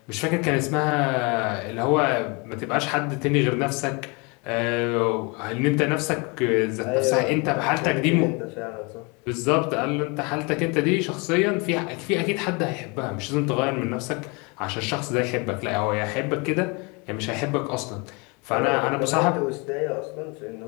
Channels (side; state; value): right; quieter; 29.9 dB